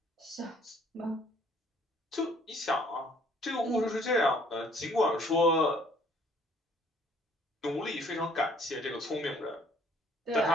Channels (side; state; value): both; normal; correlation 0.60